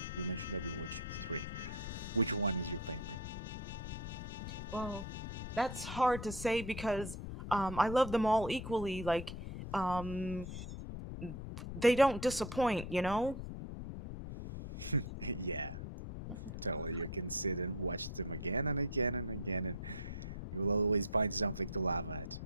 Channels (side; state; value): left; noise; rumble, 7 dB below the sound